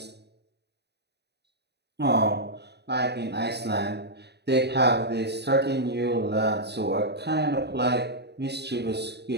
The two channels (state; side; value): late; left; 0.49 ms